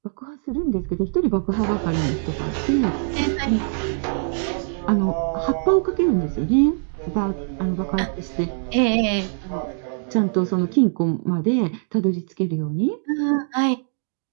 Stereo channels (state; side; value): silent; left; 64 dB below the other